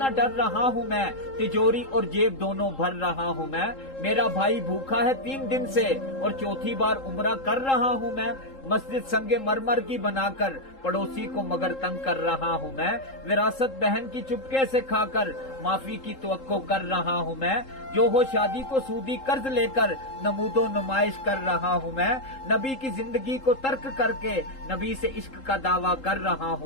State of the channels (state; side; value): late; right; 3.8 ms